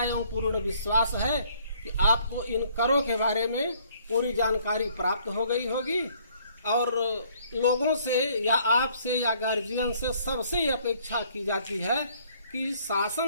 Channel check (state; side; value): inverted; both; correlation -0.62